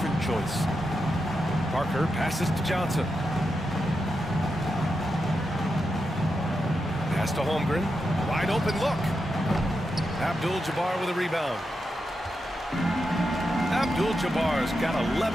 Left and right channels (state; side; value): normal; both; correlation 0.87